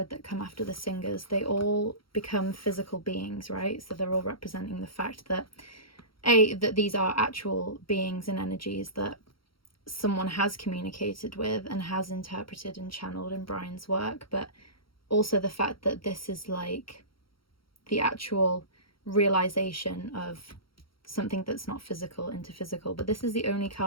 that come after the singers, they all become physical beings, right? So they're all representing the fact that that these are actual beings and energies that someone has communicated with and has interpreted and channeled in Brian's work, but also the fact that this is like the actual realization of something that's not physical into physical. But this is the only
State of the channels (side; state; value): right; late; 0.74 ms